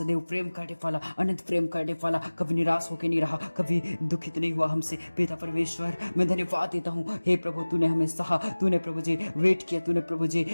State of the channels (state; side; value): inverted; both; correlation -1.00